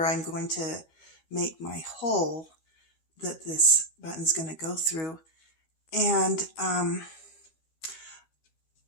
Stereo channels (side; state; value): right; late; 13 ms